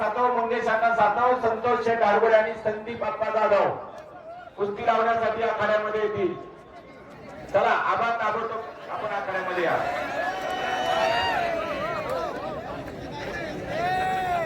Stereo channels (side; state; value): both; identical; correlation 1.00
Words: मंगेश अण्णा सातव, संतोष शेठ आडगोडे आणि संदीप अप्पा जाधव कुस्ती लावण्यासाठी आखाड्यामध्ये येतील. चला आबा ताबडतोब आपण आखाड्यामध्ये या.